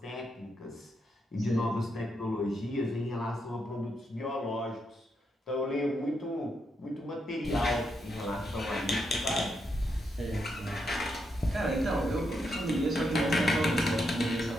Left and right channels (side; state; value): both; normal; correlation 0.81